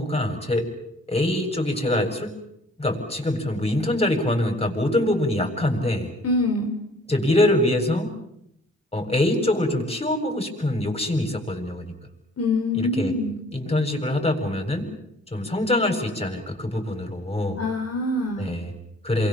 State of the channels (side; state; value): both; normal; correlation 0.55